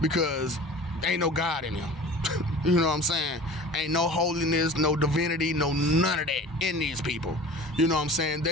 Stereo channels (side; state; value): both; normal; correlation 0.40